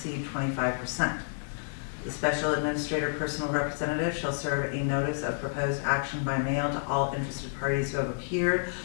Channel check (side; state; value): right; silent; digital silence